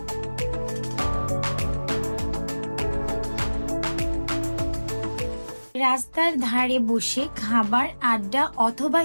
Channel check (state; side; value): inverted; both; correlation -1.00